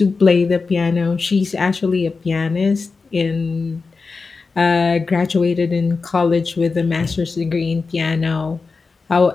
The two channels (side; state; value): right; quieter; 4.4 dB